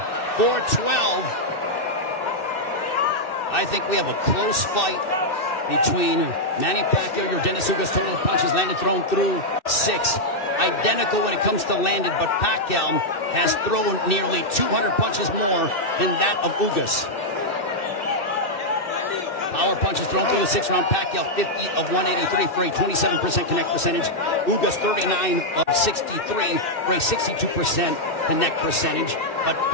for 12. I think we have a close fight between Manny Pacquiao, Yordenis Ugas. Total punches landed, thrown through 6. Identical when it comes to landed, but Pacquiao has thrown nearly 200 punches more than that of Ugas. Power punches thrown through the 6th round. Pacquiao 50 of 183 for a 27% connect percentage. Ugas 39 of 63 for a 62% connect percentage. But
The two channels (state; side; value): late; right; 2.6 ms